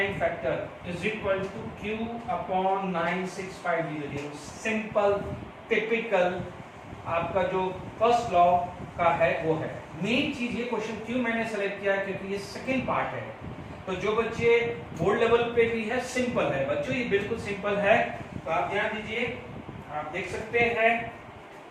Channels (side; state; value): both; identical; correlation 1.00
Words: factor is equal to Q upon 96500। Simple typical आपका जो फर्स्ट लॉ का है वो है। मेन चीज ये क्वेश्चन क्यों मैंने सेलेक्ट किया, क्योंकि ये सेकंड पार्ट है। तो जो बच्चे बोर्ड लेवल पे भी है, सिंपल है बच्चों, ये बिल्कुल सिंपल है। तो आप ध्यान दीजिए, आप देख सकते हैं